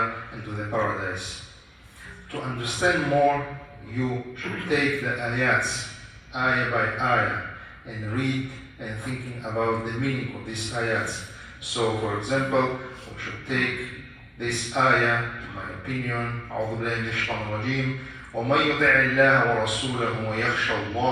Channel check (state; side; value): identical; both; correlation 1.00